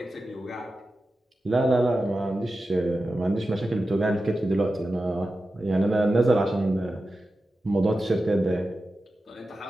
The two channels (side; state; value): both; normal; correlation 0.93